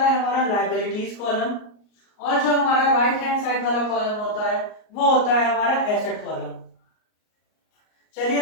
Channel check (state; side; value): late; right; 38 ms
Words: हमारा लायबिलिटीज कॉलम, और जो हमारा राइट हैंड साइड वाला कॉलम होता है वो होता है हमारा एसेट कॉलम। चलिए